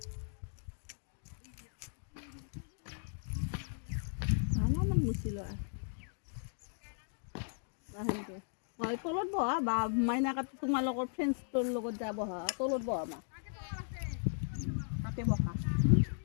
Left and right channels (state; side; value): silent; right; digital silence